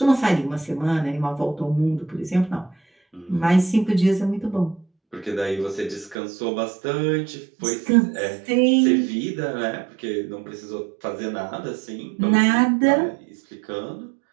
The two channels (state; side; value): drops out; left; at 6.2 s